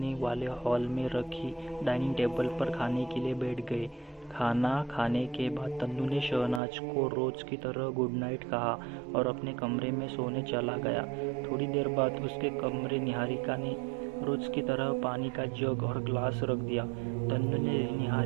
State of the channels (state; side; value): drops out; left; at 6.6 s